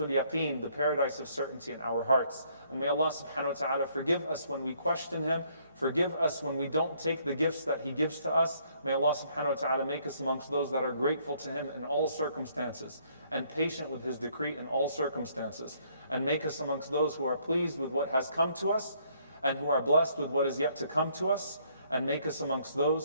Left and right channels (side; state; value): both; inverted; correlation -0.66